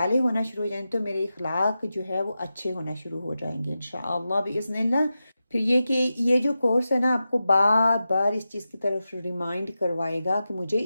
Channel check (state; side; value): inverted; both; correlation -0.92